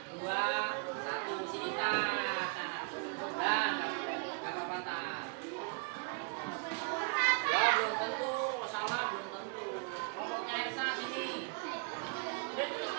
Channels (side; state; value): left; quieter; 34.8 dB